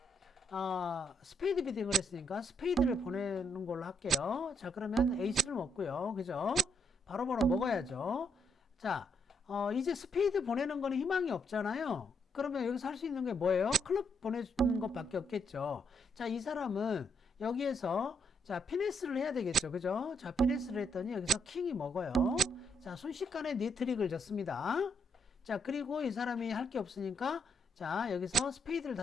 스페이드 비딩을 했으니까 스페이드를 보내는 걸로 할게요. 자, 그러면 에이스를 먹고요. 그죠? 바로바로 먹어야죠. 자, 이제 스페이드 보내는 거는 희망이 없잖아요. 그러면 여기서 할 수 있는 게 뭐예요? 클럽 보내주는 것밖에 없겠죠. 자, 이 사람은 여기에서 자, 피네스를 해야 되겠죠. 그죠? 자, 피네스를 했더니 여기서 킹이 먹어요. 자, 순식간에 니트릭을 졌습니다. 자, 그리고 이 사람이 할 게 없으니까 자, 여기서 스페이드를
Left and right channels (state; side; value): normal; both; correlation 0.77